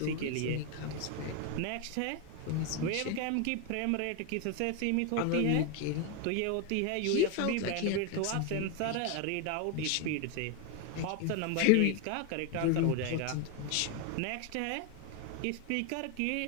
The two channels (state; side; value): different; both; correlation 0.01